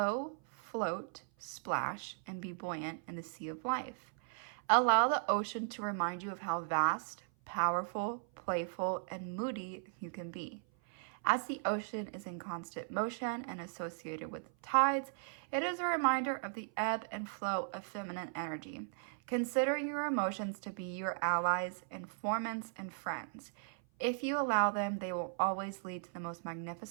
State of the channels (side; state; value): left; silent; 53 dB below the other